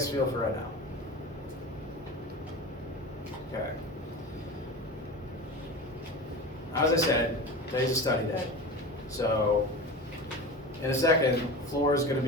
feel for right now? Okay. As I said, today's a study day. So, in a second, the floor is going to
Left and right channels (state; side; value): normal; both; correlation 0.30